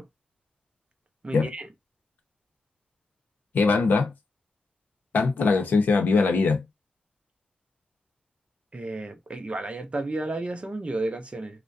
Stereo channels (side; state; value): right; quieter; 3.1 dB